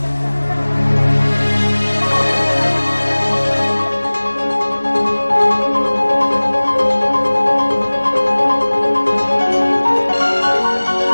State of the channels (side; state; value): both; inverted; correlation -1.00